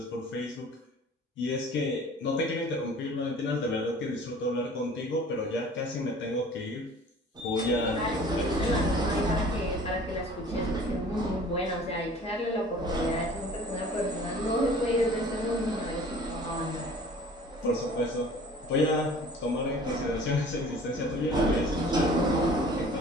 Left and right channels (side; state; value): both; normal; correlation 0.47